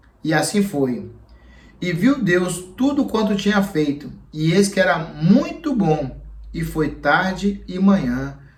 E assim foi. E viu Deus tudo quanto tinha feito, e eis que era muito bom, e foi tarde e manhã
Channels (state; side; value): identical; both; correlation 1.00